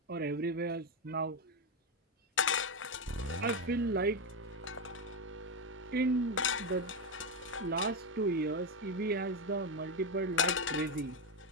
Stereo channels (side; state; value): both; normal; correlation 0.10